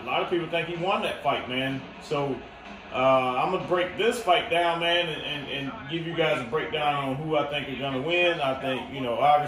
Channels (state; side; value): identical; both; correlation 1.00